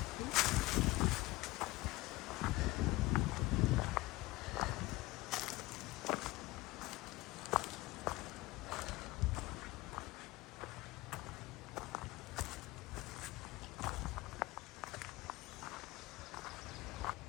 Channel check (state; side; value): quieter; right; 20.1 dB